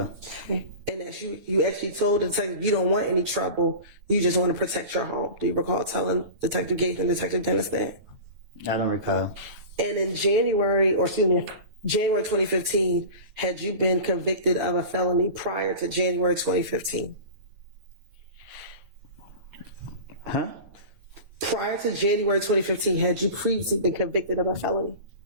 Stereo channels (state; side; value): late; left; 9.3 ms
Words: Okay. And that you actually told the detective you don't want any trouble, you just want to protect your home. Do you recall telling Detective Gates and Detective Dennis that? I don't recall. And in January 2015, had you been convicted of a felony prior to January 2015? Huh? Prior to January 2015, had you previously been convicted of a felony?